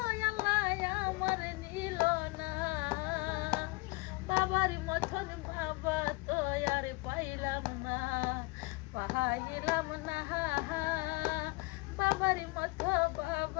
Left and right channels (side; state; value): right; quieter; 24.8 dB